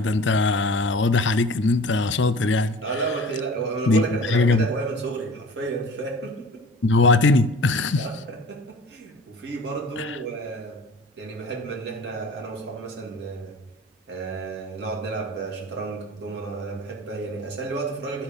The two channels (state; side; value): normal; both; correlation 0.42